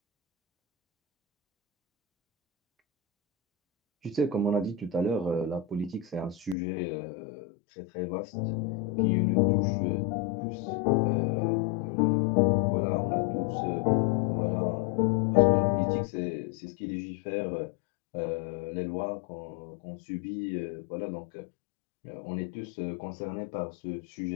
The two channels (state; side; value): drops out; right; at 6.6 s